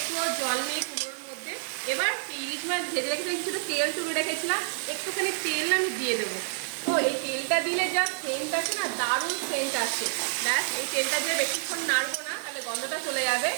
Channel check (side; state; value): left; silent; 59 dB below the other